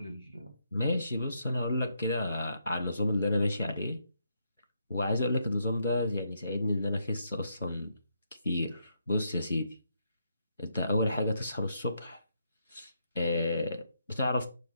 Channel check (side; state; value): both; inverted; correlation -0.77